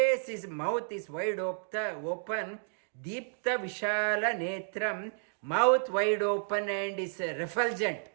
is, mouth is wide open. Deepta Vishala Netram, mouth wide open and is refulgent.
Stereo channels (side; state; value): left; silent; digital silence